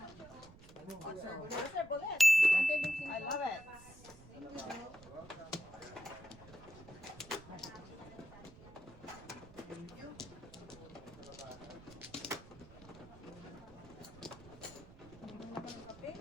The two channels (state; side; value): noise; right; rumble, 19 dB below the sound